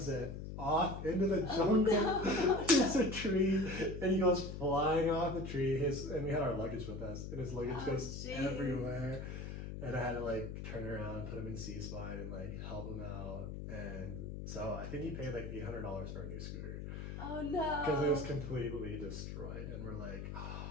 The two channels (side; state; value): left; noise; hum, 7 dB below the sound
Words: it off into the jungle. Oh, no. It's a tree, and he goes flying off the tree. And we had our luggage with us, and his luggage goes jeez. everywhere. And I had to like turn around, put him in C-spine, and like help him out. And so I think he paid like $800 for a new scooter Oh no. because it was completely destroyed. And we're like,